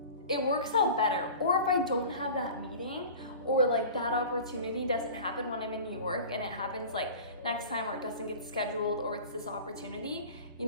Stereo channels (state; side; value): inverted; both; correlation -0.38